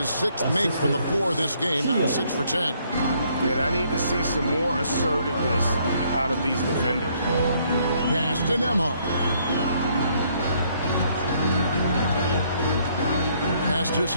6th make from the floor this game. Now 6 for 10. Yeah, I need to see some more assertiveness out of these defenders. Pass to Nembhard. Pass to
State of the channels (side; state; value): both; inverted; correlation -0.68